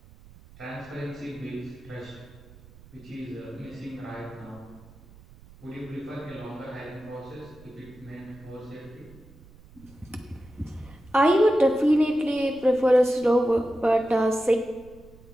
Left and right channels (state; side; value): noise; right; rumble, 23 dB below the sound